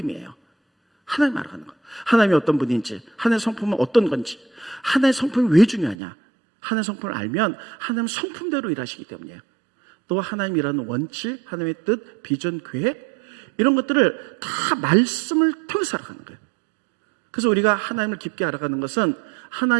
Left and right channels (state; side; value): drops out; left; at 6.0 s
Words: 하나님 알아가는 것. 하나님이 어떤 분인지, 하나님의 성품은 어떤 건지, 하나님의 성품이 왜 중요하냐. 하나님의 성품을 알면 하나님은 성품대로 일하시기 때문이에요. 또 하나님이라는 원칙, 하나님의 뜻, 비전, 계획, 이런 것들을 다 말씀을 통해서 알아가는 거예요. 그래서 우리가 하나님을 깊게 알아가는 것은,